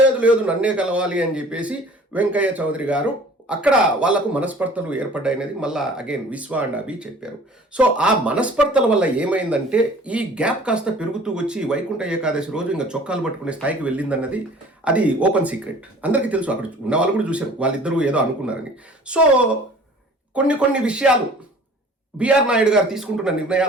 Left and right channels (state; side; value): normal; both; correlation 0.48